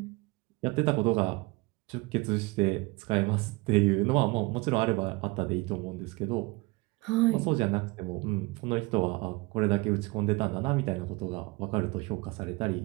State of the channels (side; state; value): left; quieter; 24.6 dB